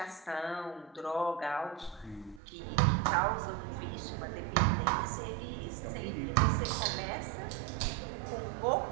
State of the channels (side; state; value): left; drops out; at 2.4 s